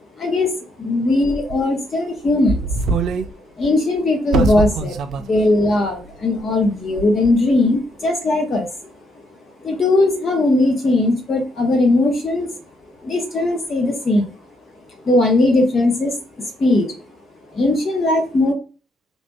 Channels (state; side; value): normal; both; correlation 0.74